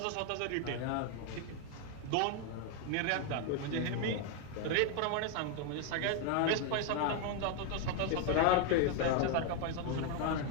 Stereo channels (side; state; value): both; different; correlation 0.01